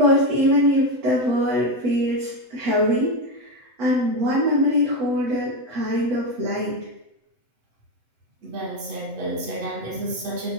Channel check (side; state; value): left; late; 8.0 ms